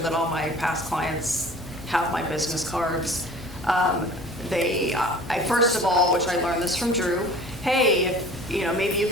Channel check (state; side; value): normal; both; correlation 0.45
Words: all my past clients have my business cards. I first of all, which I learned this from Drew, hey, if, maybe you